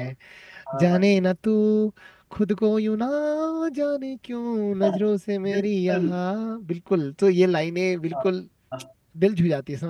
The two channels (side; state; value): both; identical; correlation 1.00